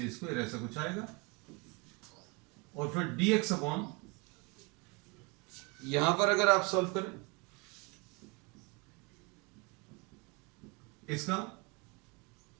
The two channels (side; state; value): left; quieter; 28.7 dB